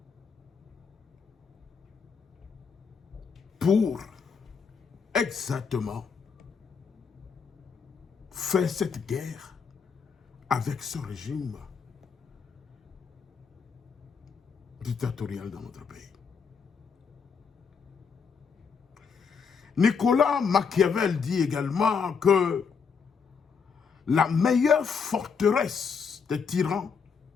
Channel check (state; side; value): quieter; right; 5.9 dB